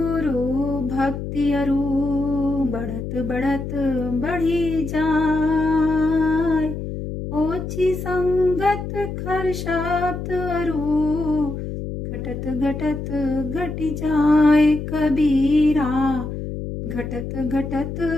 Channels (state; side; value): noise; left; hum, 6 dB below the sound